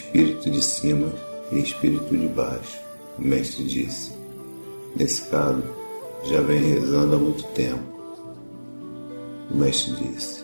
de cima e espírito de baixo. O mestre disse: nesse caso, já vem rezando há muito tempo. O mestre disse:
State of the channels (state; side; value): inverted; both; correlation -1.00